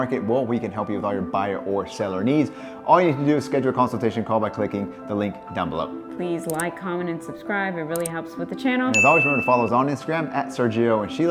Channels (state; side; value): identical; both; correlation 1.00